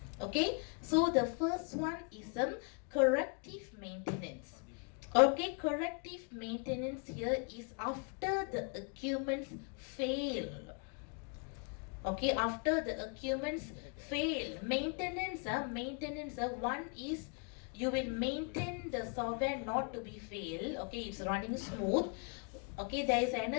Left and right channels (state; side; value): quieter; right; 37.9 dB